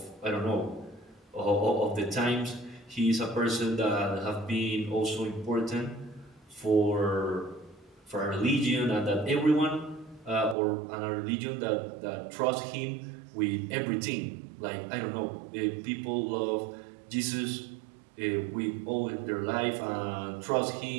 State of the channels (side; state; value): left; drops out; at 10.6 s